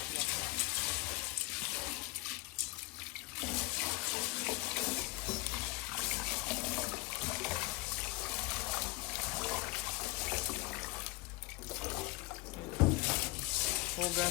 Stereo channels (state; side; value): quieter; right; 24.2 dB